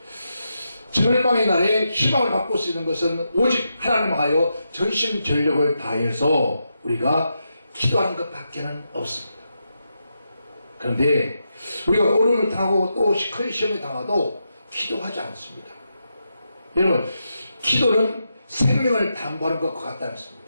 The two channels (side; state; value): both; inverted; correlation -0.85